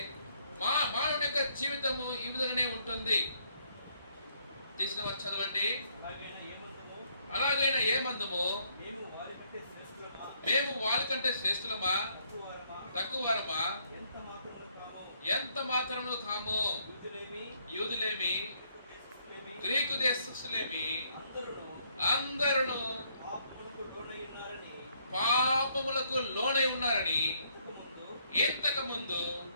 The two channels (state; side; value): inverted; both; correlation -0.69